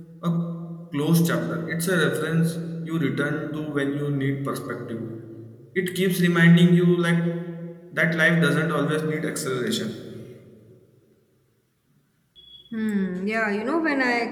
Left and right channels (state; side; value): identical; both; correlation 1.00